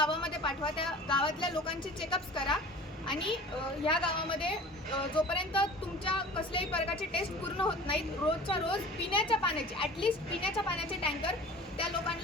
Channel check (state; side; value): normal; both; correlation 0.41